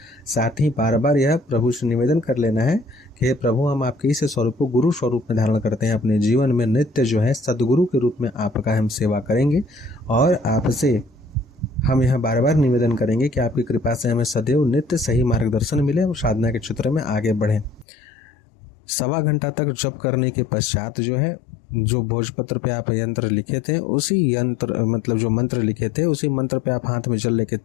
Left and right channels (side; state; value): right; drops out; at 17.9 s